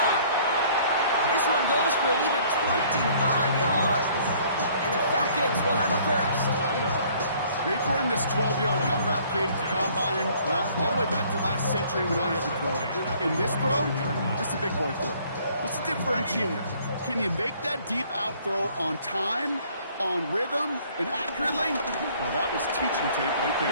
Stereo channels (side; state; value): both; inverted; correlation -0.58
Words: This one goes for an even 25 yards. And the Falcons will have a 1st. They've run this 12-yard out route, Kate, at the combine, well, all the way back to last century when I had to throw it. In this throw, this is a big boy throw. What's the differentiator? Can you make that deep out throw on time, on rhythm, and accurately? Well, that was teaching tape right